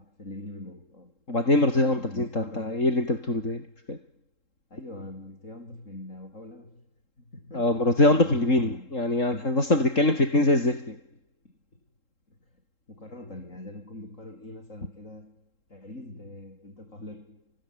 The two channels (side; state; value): right; late; 3.7 ms